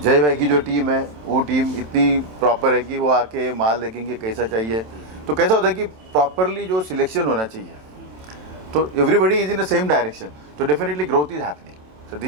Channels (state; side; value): late; left; 27 ms